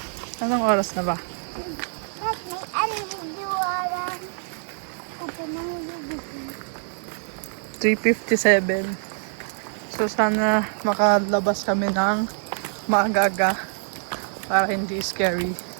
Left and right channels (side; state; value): left; silent; digital silence